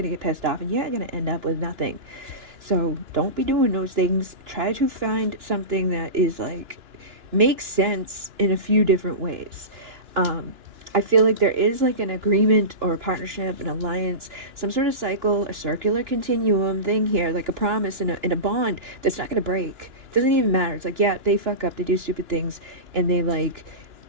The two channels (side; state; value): left; late; 2.9 ms